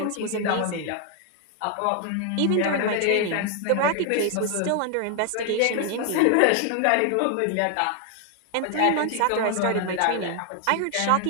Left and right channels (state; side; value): different; both; correlation 0.00